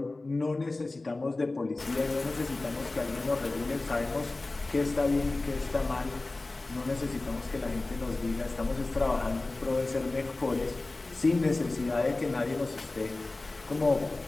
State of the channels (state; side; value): quieter; right; 3.1 dB